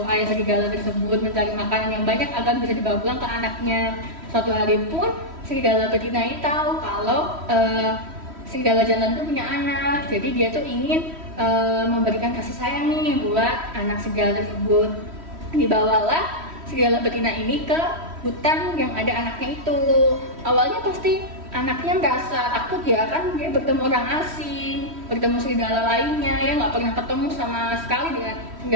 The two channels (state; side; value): late; left; 3.1 ms